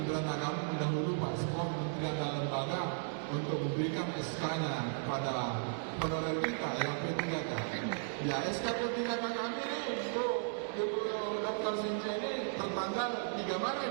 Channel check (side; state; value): left; silent; digital silence